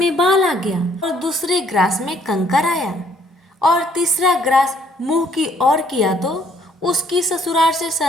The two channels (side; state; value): both; normal; correlation 0.64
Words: बाल आ गया और दूसरे ग्रास में कंकर आया और तीसरा ग्रास मुंह की ओर किया तो उसकी ससुराल से